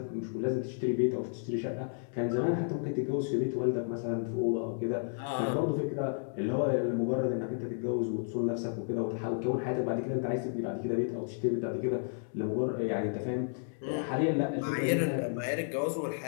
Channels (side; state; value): right; silent; digital silence